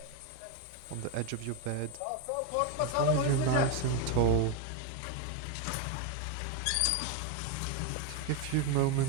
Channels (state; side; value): different; both; correlation 0.02